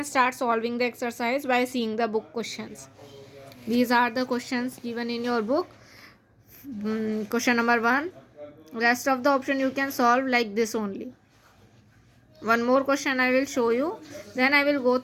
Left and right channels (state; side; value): identical; both; correlation 1.00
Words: start solving the exercise by seeing the book questions. These are the questions given in your book. Question number 1. Rest of the option you can solve like this only. One more question I will show you, then I will go